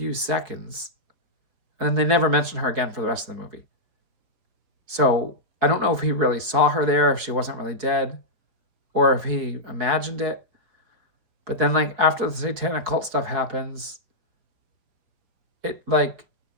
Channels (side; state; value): left; late; 4.7 ms